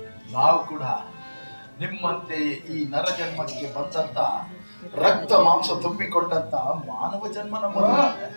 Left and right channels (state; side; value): inverted; both; correlation -1.00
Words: ನಾವು ಕೂಡ ನಿಮ್ಮಂತೆ ಈ ನರ ಜನ್ಮಕ್ಕೆ ಬಂದಂತ ರಕ್ತ ಮಾಂಸ ತುಂಬಿಕೊಂಡಂತ ಮಾನವ ಜನ್ಮ ನಮ್ಮದು.